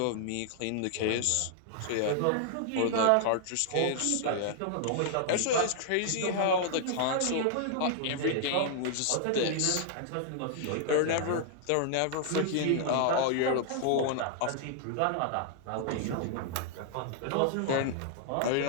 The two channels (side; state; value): both; different; correlation -0.01